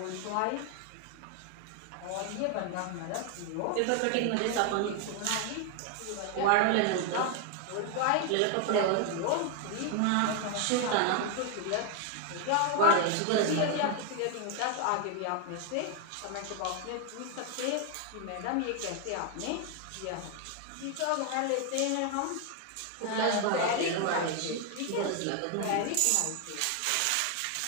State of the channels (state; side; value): different; both; correlation 0.01